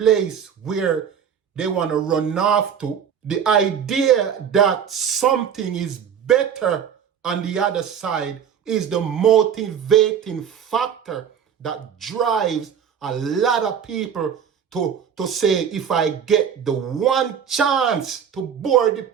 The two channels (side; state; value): left; quieter; 8.0 dB